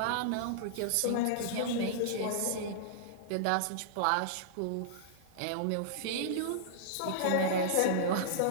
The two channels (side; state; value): both; different; correlation -0.02